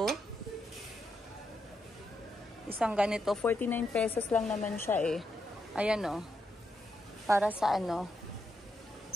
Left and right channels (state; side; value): normal; both; correlation 0.82